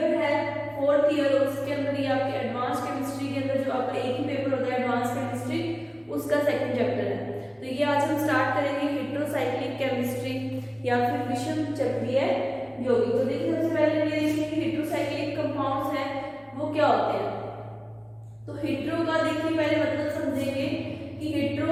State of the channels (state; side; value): identical; both; correlation 1.00